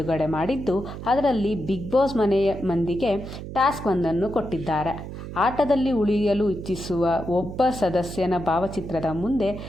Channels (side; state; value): right; noise; hum, 10 dB below the sound